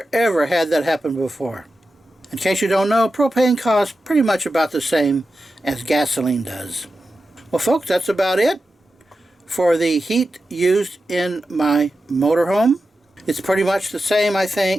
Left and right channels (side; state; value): both; normal; correlation 0.92